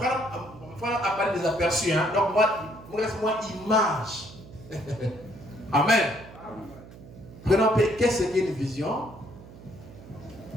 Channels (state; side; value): noise; right; hum, 18 dB below the sound